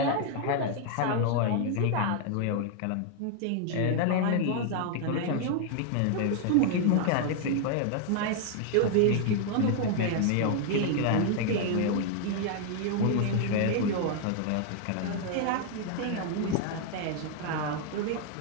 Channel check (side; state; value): both; different; correlation 0.00